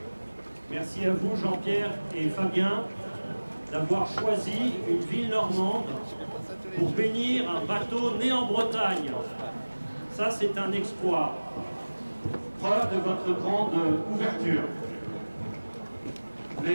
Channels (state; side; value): inverted; both; correlation -1.00